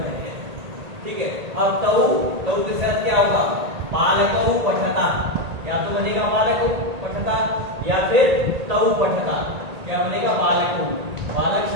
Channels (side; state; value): left; late; 1.8 ms